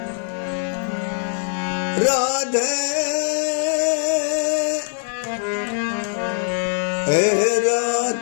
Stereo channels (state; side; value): silent; right; digital silence